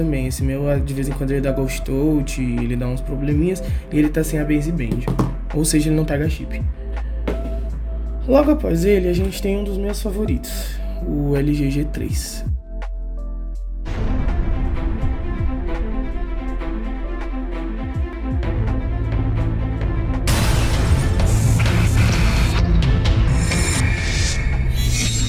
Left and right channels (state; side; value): identical; both; correlation 1.00